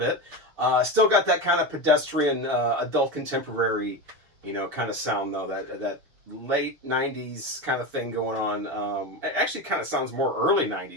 Still got that kind of pedestrian, adult contemporary, you know, kind of sound, though, that late 90s kind of thing going on. It actually kind of sounds more early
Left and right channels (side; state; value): left; late; 6.7 ms